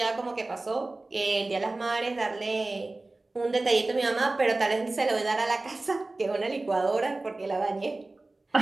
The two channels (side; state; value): left; quieter; 3.1 dB